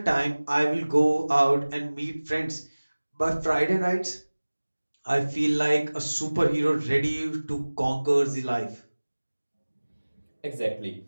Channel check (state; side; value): inverted; both; correlation -1.00